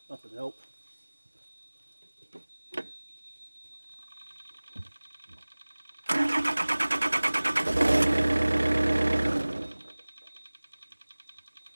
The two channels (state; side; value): inverted; both; correlation -1.00